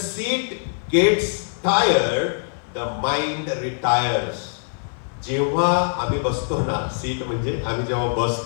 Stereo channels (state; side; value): silent; right; 58 dB below the other